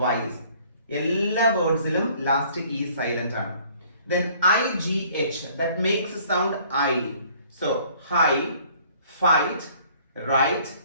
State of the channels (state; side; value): inverted; both; correlation -0.57